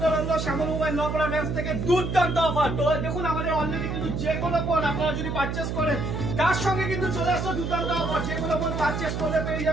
রইলো শ্যামল মোবাইল নপাড়া ব্রাঞ্চ থেকে দুর্দান্ত অফার। তো দেখুন আমাদের অলরেডি কিন্তু যে কোনো ফোন আপনারা যদি পারচেজ করেন তার সঙ্গে কিন্তু চলে আসলো দুর্দান্ত অফার। যে কোনো ফোন পারচেজ করলে পেয়ে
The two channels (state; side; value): noise; right; hum, 3 dB below the sound